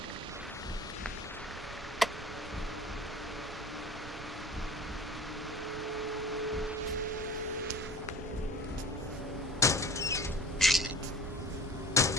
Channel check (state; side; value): normal; both; correlation 0.41